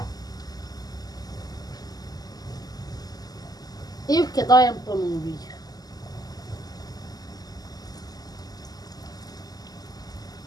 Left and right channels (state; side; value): late; right; 0.18 ms